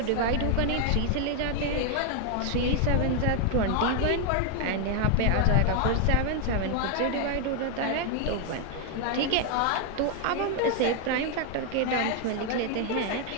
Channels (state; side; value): different; both; correlation 0.01